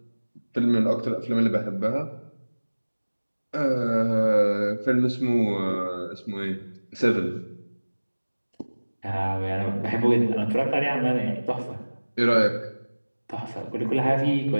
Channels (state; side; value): inverted; both; correlation -1.00